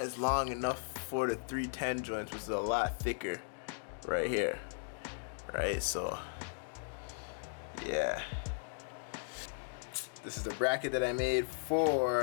long enough for the 310 joints, which is a lot thicker right here, right? So yeah, this is the bracket that I made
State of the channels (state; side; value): silent; right; digital silence